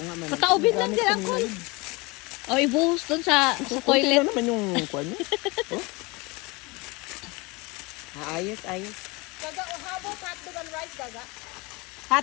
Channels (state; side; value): quieter; right; 25.6 dB